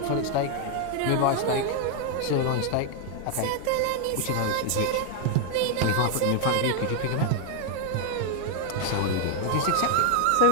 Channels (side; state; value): both; different; correlation 0.00